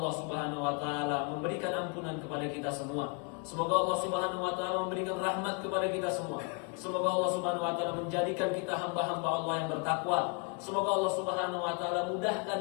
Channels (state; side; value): quieter; right; 33.5 dB